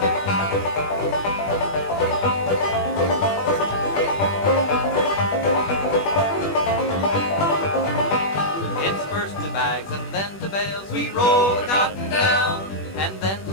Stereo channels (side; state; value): right; late; 21 ms